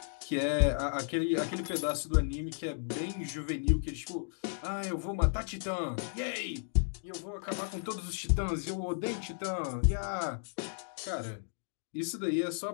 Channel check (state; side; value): silent; right; digital silence